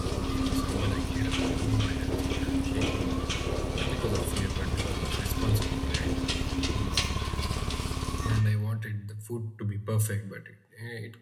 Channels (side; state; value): both; identical; correlation 1.00